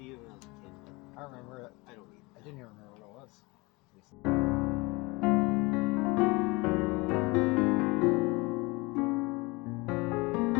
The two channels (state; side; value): quieter; right; 24.8 dB